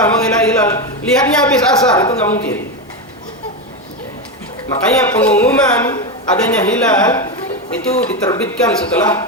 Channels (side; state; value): both; normal; correlation 0.13